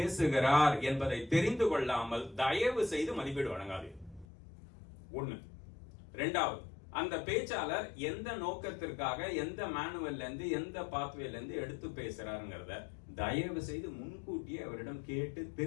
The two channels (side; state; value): right; drops out; at 4.2 s